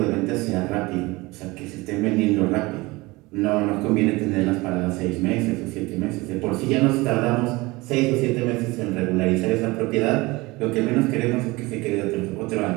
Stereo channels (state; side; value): quieter; left; 22.4 dB